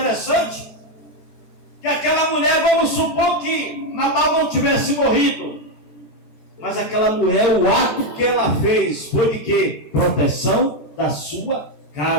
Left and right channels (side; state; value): right; late; 14 ms